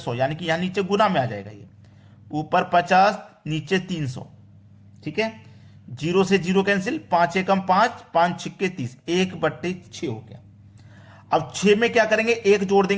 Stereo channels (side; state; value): both; identical; correlation 1.00